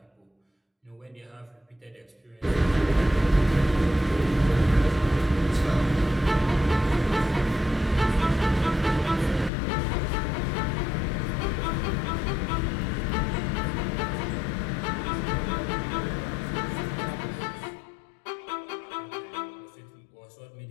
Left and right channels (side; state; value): right; drops out; at 9.5 s